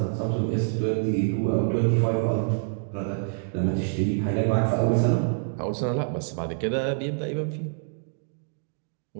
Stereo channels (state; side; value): silent; left; digital silence